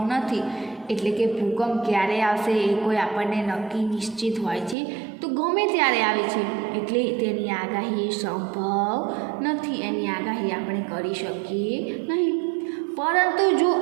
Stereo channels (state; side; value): drops out; left; at 4.8 s